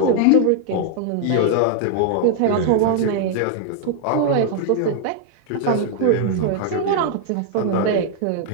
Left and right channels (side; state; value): both; different; correlation 0.00